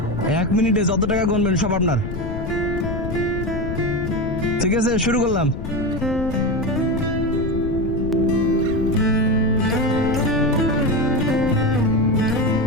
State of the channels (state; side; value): noise; left; rumble, 6 dB below the sound